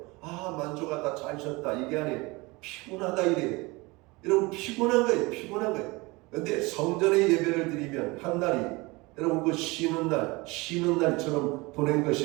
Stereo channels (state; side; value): quieter; left; 24.0 dB